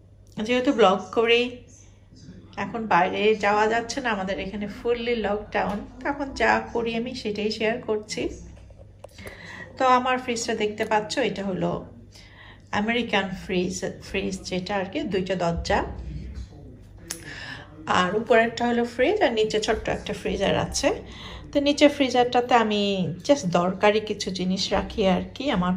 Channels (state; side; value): identical; both; correlation 1.00